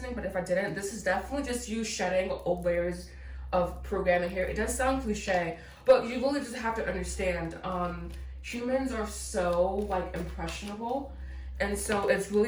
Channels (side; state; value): both; identical; correlation 1.00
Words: but if I didn't, this is definitely just you shedding old layers of programming here. It does sound cliche, but you really just have to understand, humans are so like impressionable. And so it's